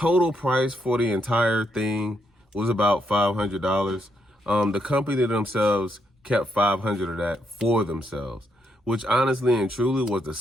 price for the entire thing was about $500. The company themselves kept 500 of that for themselves, which honestly and truly was the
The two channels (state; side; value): normal; both; correlation 0.78